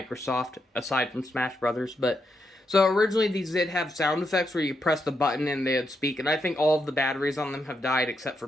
aside from Smash Brothers. But so originally these did have sound effects where you press the button and they'd speak, and I think all of the batteries on them have died except for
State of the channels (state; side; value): normal; both; correlation 0.82